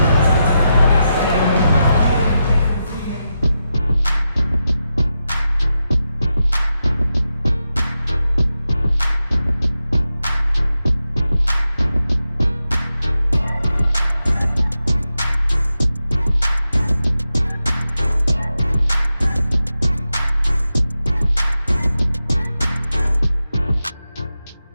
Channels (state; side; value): inverted; both; correlation -0.89